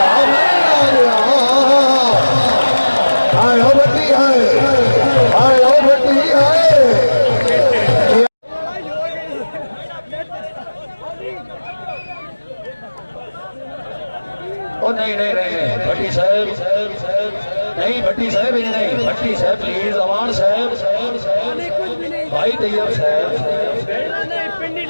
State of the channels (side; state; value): both; inverted; correlation -1.00